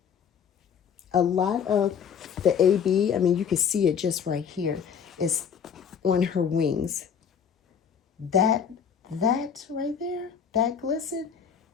A lot of the AB, I mean, you can see it just right here, is on her wings. That right there, that glisten,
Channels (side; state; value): right; quieter; 7.4 dB